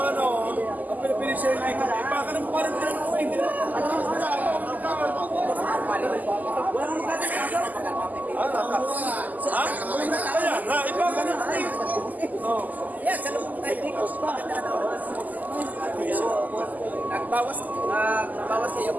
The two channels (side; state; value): left; late; 0.081 ms